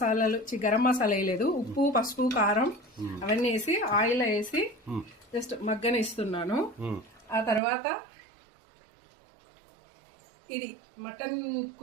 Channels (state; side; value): drops out; left; at 7.6 s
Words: వేయలేదు, ఉప్పు పసుపు కారం అవన్నీ వేసి ఆయిల్ వేసి జస్ట్ మగ్గనిస్తున్నాను. ఆ తర్వాత ఇది మటన్